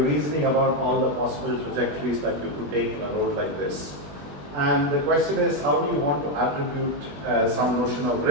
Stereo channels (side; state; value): left; late; 21 ms